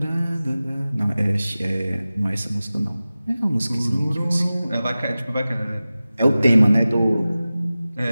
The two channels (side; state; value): both; inverted; correlation -0.96